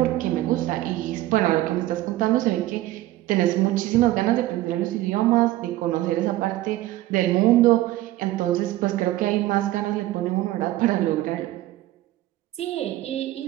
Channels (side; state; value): left; quieter; 16.1 dB